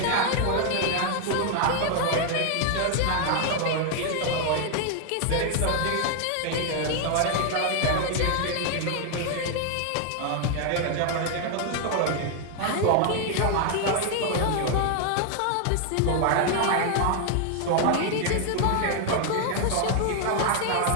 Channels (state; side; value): different; both; correlation 0.00